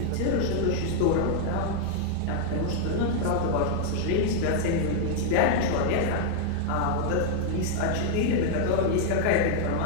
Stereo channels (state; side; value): different; both; correlation -0.01